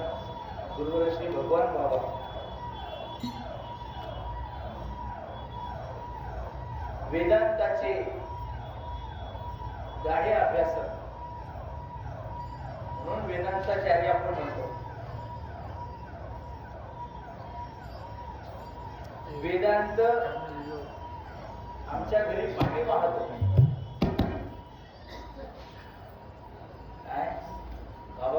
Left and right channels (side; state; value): both; identical; correlation 1.00